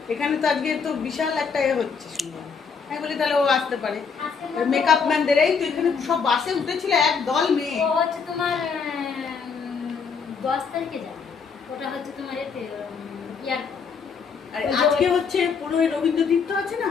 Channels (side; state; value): right; quieter; 5.8 dB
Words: এখানে তো আজকে তো বিশাল একটা এ হচ্ছে শুনলাম হ্যাঁ বলি তাহলে ও আসতে পারে আজকে না তো- মেকআপ ম্যানদের এই তো এখানে সব বাসে উঠেছিল এক দল মেয়ে ও হচ্ছে তোমার 10 তারিখে যাবে ওটা হচ্ছে তোমার এতে এয়ারপোর্ট আর আজকে হচ্ছে পুরো ওই রবীন্দ্র তীর্থ আছে না